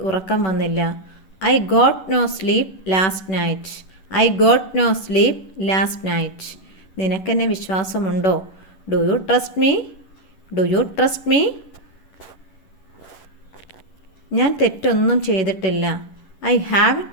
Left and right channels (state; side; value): late; right; 11 ms